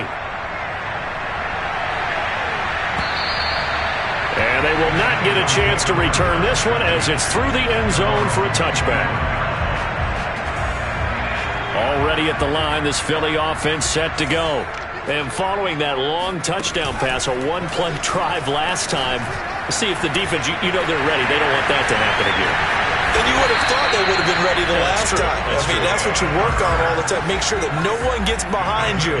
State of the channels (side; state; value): both; identical; correlation 1.00